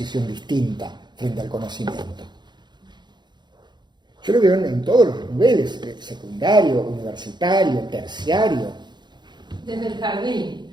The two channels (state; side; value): late; left; 0.21 ms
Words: distinta frente al conocimiento. Yo lo veo en todos los niveles, secundario, universitario, terciario. Desde el